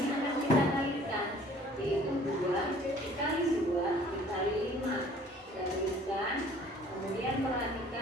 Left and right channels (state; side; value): normal; both; correlation 0.53